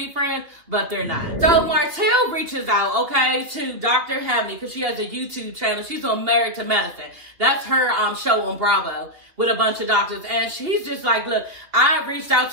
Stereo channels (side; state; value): left; late; 2.9 ms